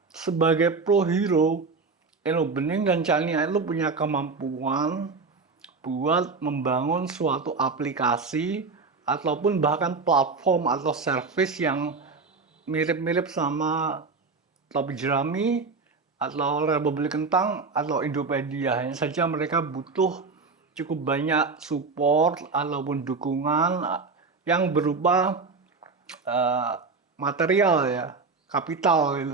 sebagai pro hero, Eno Bening dan Chania itu punya kemampuan buat membangun suatu aplikasi ataupun bahkan platform atau service yang mirip-mirip sama Topi Jerami atau Republik Kentang atau Indopedia. Hanya saja mereka butuh cukup banyak support ataupun dukungan yang berupa uh, material ya, kapital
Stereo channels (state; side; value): quieter; left; 4.3 dB